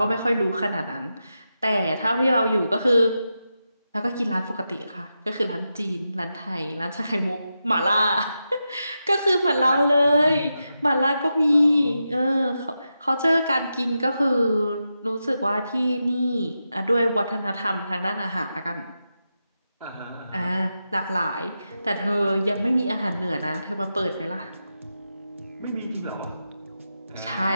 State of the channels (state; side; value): inverted; both; correlation -0.88